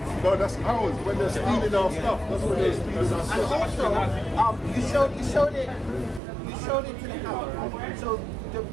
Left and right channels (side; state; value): left; drops out; at 6.2 s